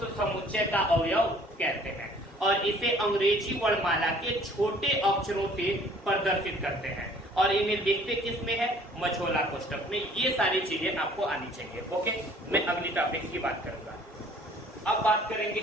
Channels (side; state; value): both; normal; correlation 0.55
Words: समुच्चय का अवयव कहते हैं। और इसे अंग्रेजी वर्णमाला के छोटे अक्षरों से प्रदर्शित करते हैं और इन्हें लिखते किस में है, मझोला कोष्टक में। ये सारी चीजें आपको आनी चाहिए। ओके, मैं अगली टॉपिक की बात करूंगा। अब बात करेंगे